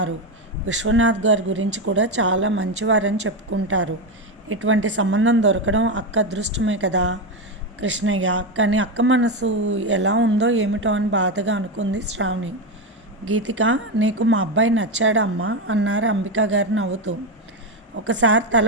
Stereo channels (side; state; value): both; normal; correlation 0.11